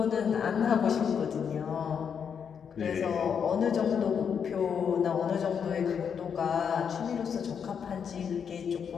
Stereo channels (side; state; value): right; quieter; 7.2 dB